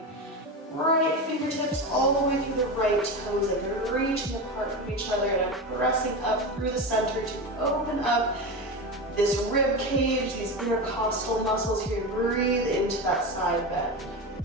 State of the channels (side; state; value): both; normal; correlation 0.21